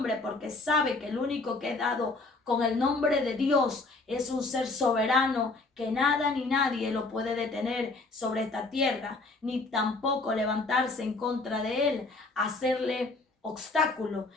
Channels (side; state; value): right; quieter; 3.4 dB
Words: porque sabe que el único que es dado con el nombre de Dios es un ser soberano, que nada ni nadie lo puede detener sobre esta tierra, ni tampoco levantarse en contra de él, hacerle obstáculo.